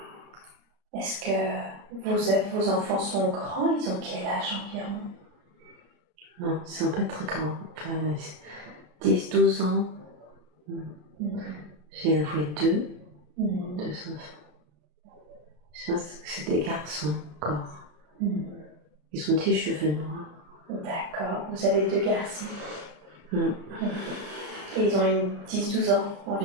est-ce que vos enfants sont grands? Ils ont quel âge environ? Non, ils sont pas très grands. Enfin, 10, 12 ans. J'ai avoué deux enfants. Je pense que c'est des garçons encore. Ils ont des cheveux noirs. D'accord. Vous avez deux garçons. Mm. Et ils ont une 10-12 ans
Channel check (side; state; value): left; late; 33 ms